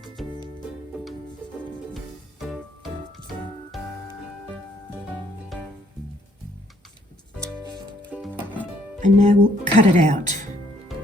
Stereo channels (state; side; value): normal; both; correlation 0.66